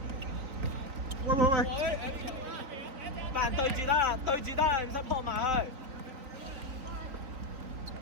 樣。喂喂喂！班人對住得啦，對住得啦，唔使撲埋去。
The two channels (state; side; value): late; left; 3.8 ms